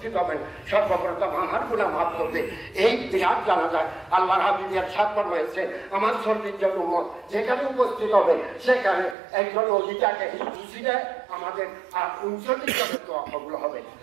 হবেন, সর্বপ্রথম আমার গুনাহ মাফ করবে। এই বিরাট জানাজায় আল্লাহর হাবিব ইরশাদ ফরমাইছে, আমার সর্বজন উম্মত যেখানে উপস্থিত হবে সেখানে একজন ওলিটাকে খুশিতে আমাদের আর 39 জনের দোয়া কবুল হবে।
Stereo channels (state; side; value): drops out; left; at 9.2 s